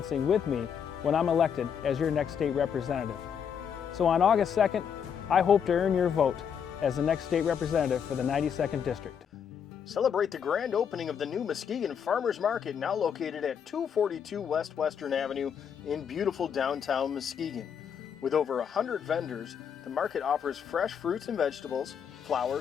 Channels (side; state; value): right; quieter; 7.6 dB